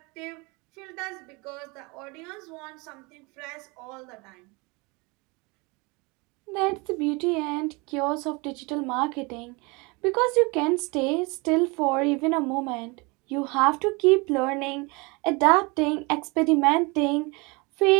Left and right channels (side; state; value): left; quieter; 27.5 dB